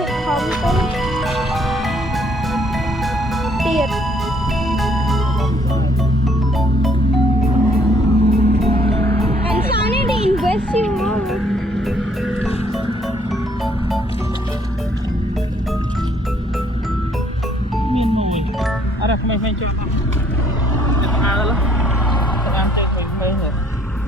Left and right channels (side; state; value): both; normal; correlation 0.64